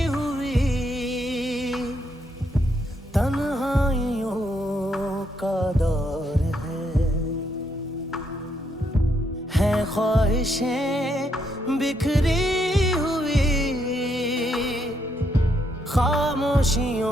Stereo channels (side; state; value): both; normal; correlation 0.76